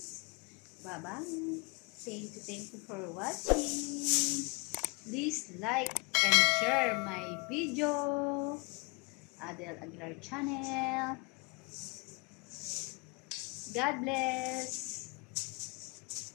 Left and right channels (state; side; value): quieter; right; 30.5 dB